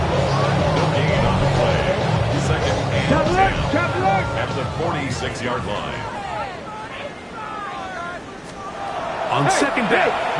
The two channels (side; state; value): both; identical; correlation 1.00